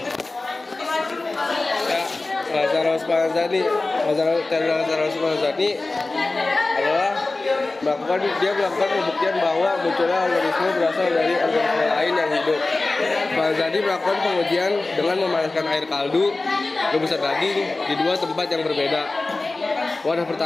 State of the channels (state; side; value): quieter; right; 3.2 dB